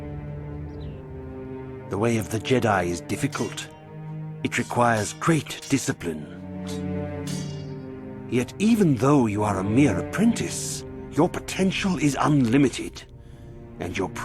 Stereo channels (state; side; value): identical; both; correlation 1.00